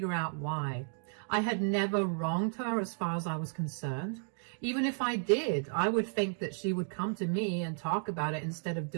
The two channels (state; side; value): silent; left; 56 dB below the other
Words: out why. I had never wronged her as far as I was concerned. Even if I did, I would think that she would come to me and talk about it instead of